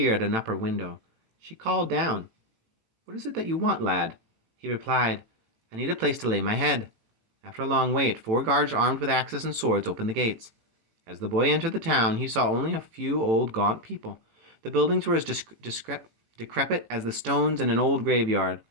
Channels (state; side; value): late; left; 18 ms